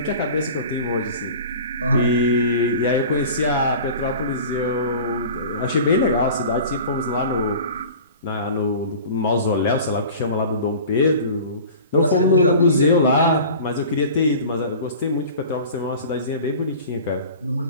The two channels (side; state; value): both; inverted; correlation -0.40